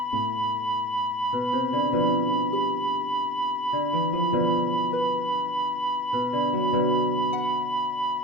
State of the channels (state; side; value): late; right; 8.1 ms